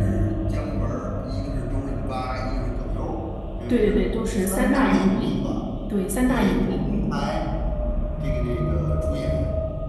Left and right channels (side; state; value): both; identical; correlation 1.00